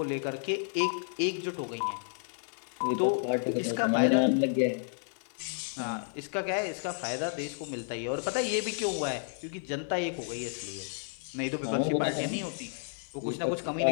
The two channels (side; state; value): right; silent; 57 dB below the other